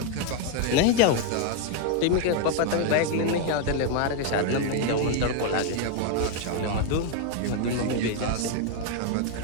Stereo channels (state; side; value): different; both; correlation 0.01